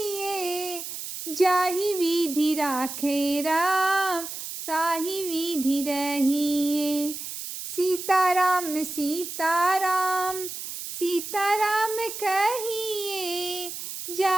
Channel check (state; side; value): noise; right; hiss, 8 dB below the sound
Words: जाहि विधि राखे राम ताहि विधि रहिए। सीताराम सीताराम सीताराम कहिए,